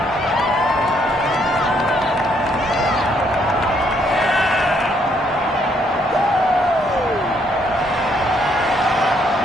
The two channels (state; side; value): normal; both; correlation 0.70